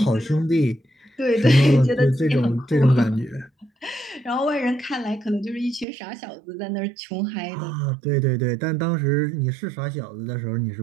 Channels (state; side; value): drops out; left; at 5.9 s